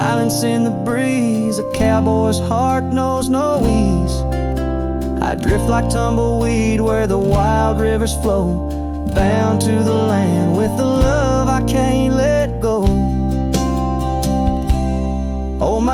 in the breeze. A cowboy's heart knows no ease. I drift like tumbleweed where the wild rivers flow, bound to the land with the love I can't let go. Oh,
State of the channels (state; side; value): identical; both; correlation 1.00